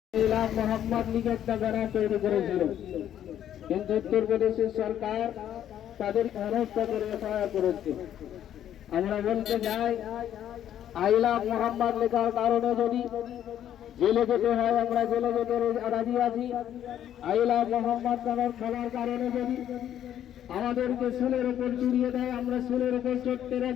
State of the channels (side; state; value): right; quieter; 10.7 dB